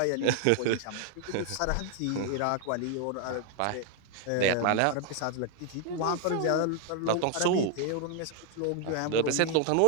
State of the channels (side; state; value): both; different; correlation 0.00